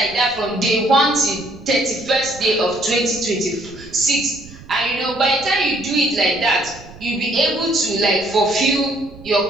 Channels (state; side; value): noise; right; rumble, 20 dB below the sound